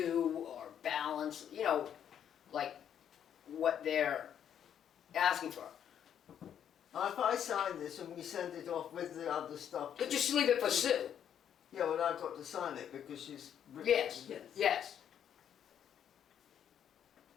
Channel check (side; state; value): right; quieter; 9.2 dB